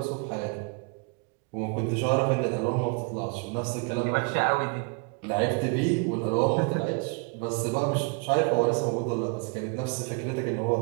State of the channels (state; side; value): quieter; left; 32.8 dB